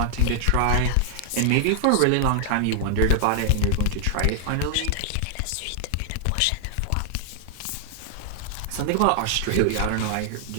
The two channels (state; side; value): different; both; correlation 0.00